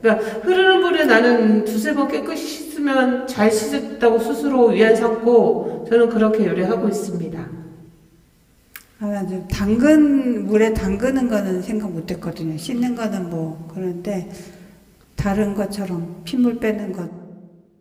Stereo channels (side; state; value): both; identical; correlation 1.00